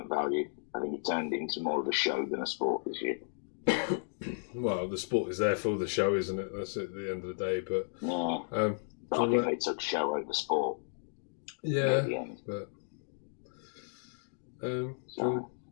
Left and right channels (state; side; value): silent; right; digital silence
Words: value. I think it turned into more of a show than a sport this year. Well, the sport is there for the show, isn't it? That's at the end of the day. But yeah, but I think they took show over sport. Yeah, at the end. But